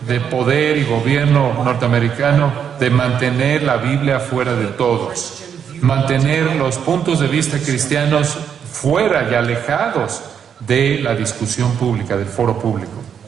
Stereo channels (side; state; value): left; quieter; 7.9 dB